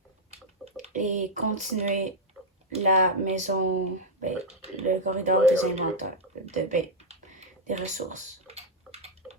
et continuer la maison, le corridor des inventaires, des ressources.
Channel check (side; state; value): both; normal; correlation -0.02